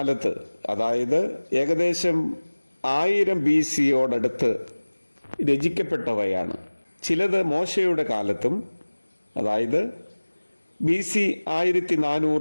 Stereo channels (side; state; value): both; inverted; correlation -1.00